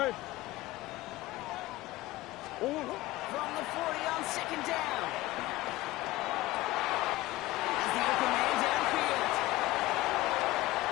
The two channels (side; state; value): right; quieter; 18.1 dB